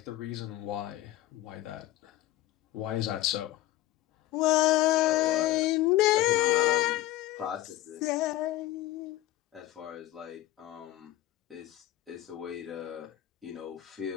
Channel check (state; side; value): quieter; right; 15.3 dB